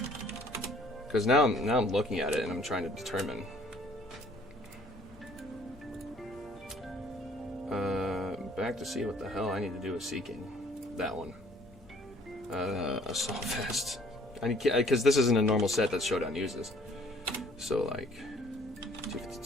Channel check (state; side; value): noise; left; hum, 26 dB below the sound